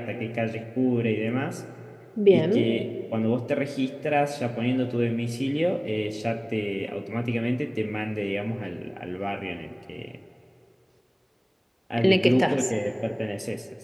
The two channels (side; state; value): both; identical; correlation 1.00